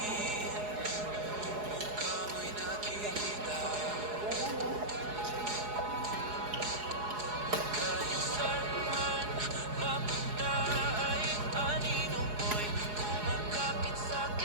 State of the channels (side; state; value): left; late; 4.8 ms